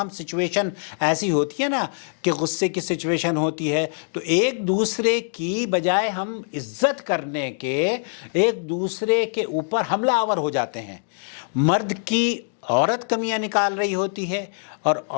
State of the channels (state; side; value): silent; right; digital silence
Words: سچویشن ایسی ہوتی ہے نا کہ غصے کی سچویشن ہوتی ہے, تو ایک دوسرے کی بجائے ہم عزت کرنے کے ایک دوسرے کے اوپر حملہ آور ہو جاتے ہیں. مرد کی عورت کمیاں نکال رہی ہوتی ہے اور